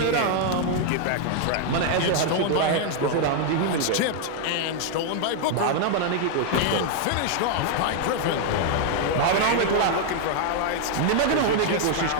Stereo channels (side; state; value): both; different; correlation 0.00